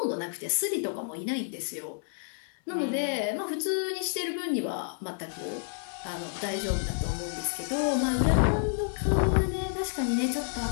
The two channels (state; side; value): silent; right; digital silence